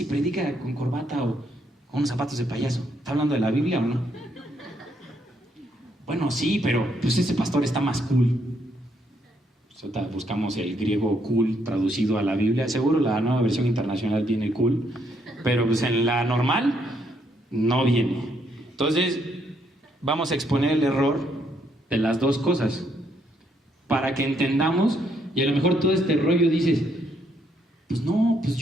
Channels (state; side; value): normal; both; correlation 0.73